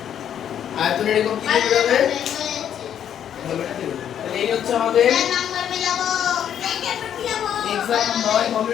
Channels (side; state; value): right; quieter; 9.5 dB